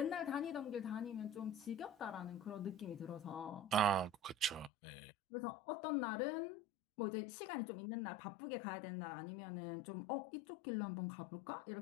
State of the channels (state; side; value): drops out; right; at 4.7 s